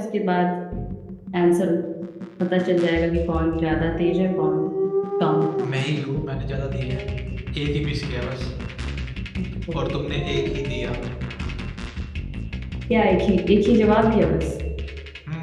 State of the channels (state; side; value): identical; both; correlation 1.00